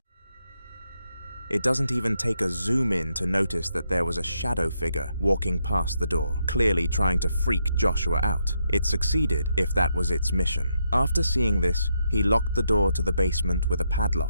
It doesn't even take a zoom in to notice that there was a shadow figure walking past the door, clearly trying to freak Joshua out. It succeeded if that was its mission. After seeing this, he locked the door to the basement with a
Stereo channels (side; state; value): both; inverted; correlation -0.79